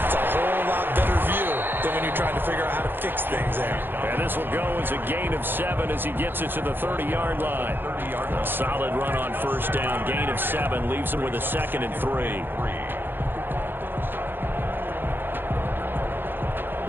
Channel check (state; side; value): late; left; 0.099 ms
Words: a whole lot better view than when you're trying to figure out how to fix things there. And this will go as a gain of 7 as he gets it to the 30-yard line. A solid run on first down. Gain of 7 leaves him with a 2nd and 3.